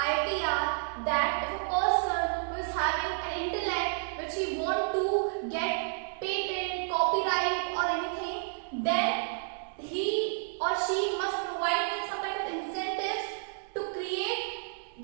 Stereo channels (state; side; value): silent; left; digital silence